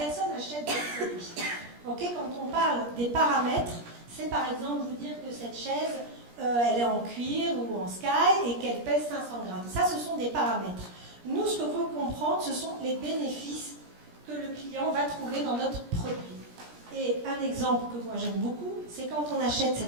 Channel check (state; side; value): late; left; 17 ms